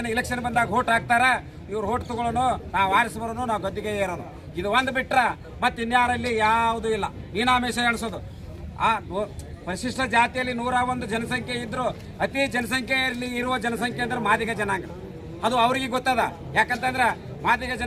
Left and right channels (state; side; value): identical; both; correlation 1.00